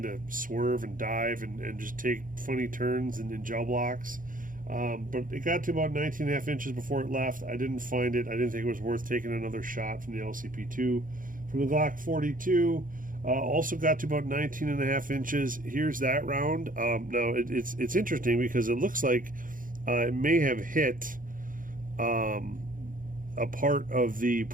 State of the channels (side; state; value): left; late; 0.39 ms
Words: of swerve and dive and just take funny turns in gel blocks. But it got to about 19.5 inches before it left. I didn't find it. I didn't think it was worth taking another shot from the LCP2. From the Glock 42, also got to about 19.5 inches. Here's that round. Now it's interesting because it looks like it may have hit a part of the